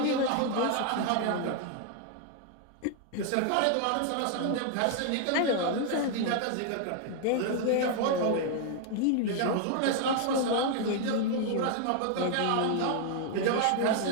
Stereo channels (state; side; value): different; both; correlation 0.00